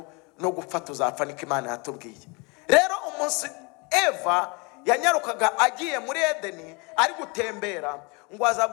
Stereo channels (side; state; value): right; quieter; 29.7 dB